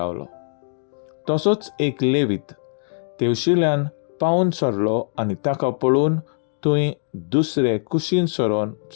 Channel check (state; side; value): silent; right; digital silence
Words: तसोच एक लेवीत तेवशिल्यान पावून सरलो आनी ताका पळोवन थंय दुसरे कुशीन सरोन